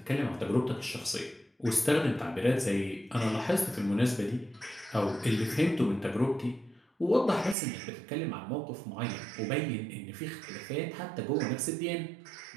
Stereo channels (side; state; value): left; drops out; at 7.6 s